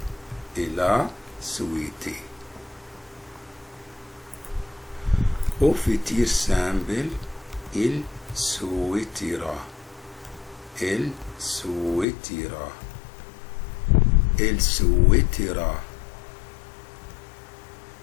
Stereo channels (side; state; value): right; drops out; at 12.1 s